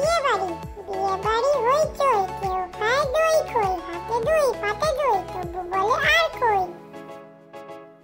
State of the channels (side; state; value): both; identical; correlation 1.00